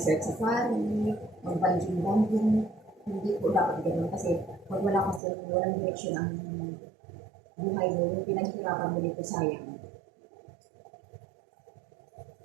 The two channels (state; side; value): drops out; left; at 5.2 s